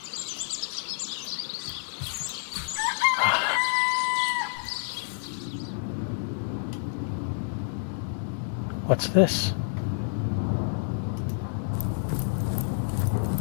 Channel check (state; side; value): silent; right; digital silence